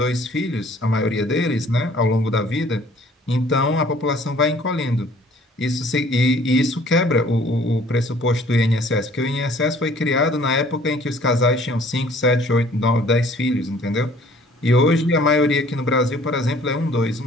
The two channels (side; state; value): both; normal; correlation 0.55